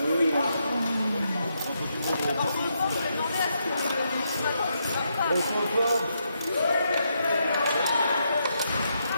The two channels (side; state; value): both; inverted; correlation -0.80